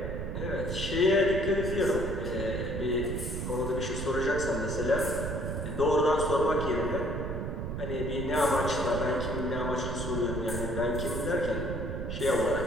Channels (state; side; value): noise; right; rumble, 4 dB below the sound